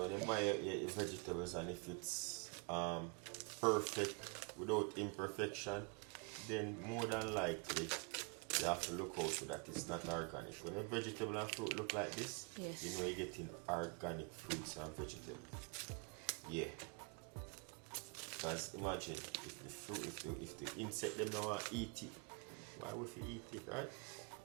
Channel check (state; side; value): quieter; left; 30.9 dB